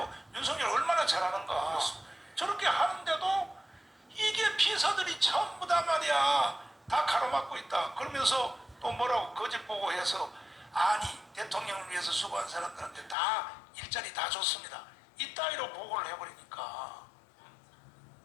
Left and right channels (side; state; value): right; drops out; at 13.2 s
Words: 윤석열 얼마나 잘하는가. 저렇게 하는데도 이게 비서들이 전부 다 말이야 다 가로막고 있다. 그러면서 또 뭐라고 거짓 보고해서 아니 대통령을 위해서 수고한 사람들한테 다 일자리 다 줬습니다. 이따위로 보고를 해버리니까